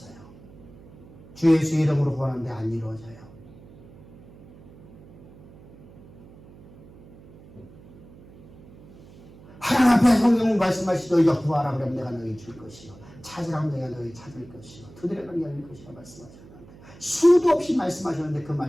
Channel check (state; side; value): noise; right; hum, 21 dB below the sound